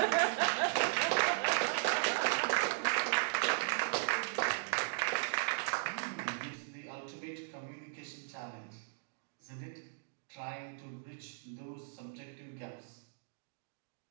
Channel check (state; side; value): silent; left; digital silence